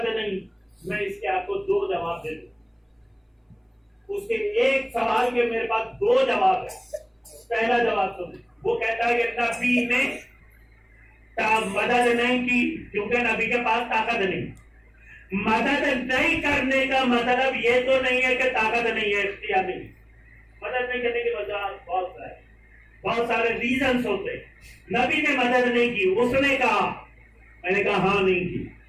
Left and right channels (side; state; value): both; identical; correlation 1.00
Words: نہیں۔ میں اس کے آپ کو دو جواب دے دوں، اس کے ایک سوال کے میرے پاس دو جواب ہے۔ پہلا جواب سنیں، وہ کہتا ہے کہ نبی نے مدد نہیں کی کیونکہ نبی کے پاس طاقت نہیں۔ مدد نہیں کرنے کا مطلب یہ تو نہیں ہے کہ طاقت نہیں ہے، اختیار نہیں۔ مدد نہیں کرنے کی وجہ بہت سارے ریزنز ہوتے۔ نبی نے مدد نہیں کی، اس نے کہا، میں نے کہا ہاں نہیں